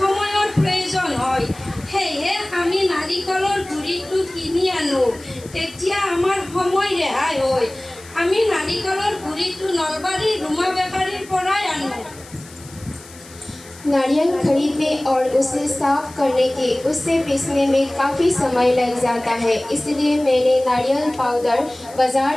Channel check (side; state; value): left; noise; hiss, 20 dB below the sound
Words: প্ৰয়োজন হয়। সেয়ে আমি নাৰিকলৰ গুড়িটো কিনি আনো, তেতিয়া আমাৰ সময় ৰেহাই হয়। আমি নাৰিকলৰ গুড়িটো নলবাৰীৰ ৰুমা বেকাৰীৰ পৰাই আনো। नारियल खरीदने और उसे साफ करने के उससे पीसने में काफ़ी समय लग जाता है, इसलिए मैंने नारियल पाउडर